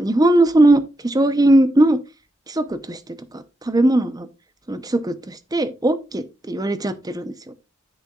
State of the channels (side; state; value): both; normal; correlation 0.85